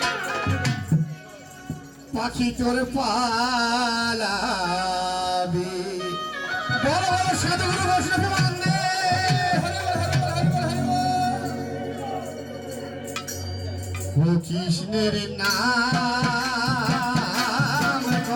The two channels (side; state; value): both; identical; correlation 1.00